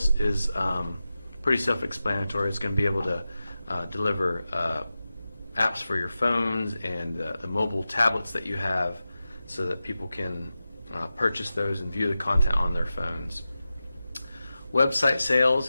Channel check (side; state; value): both; inverted; correlation -0.93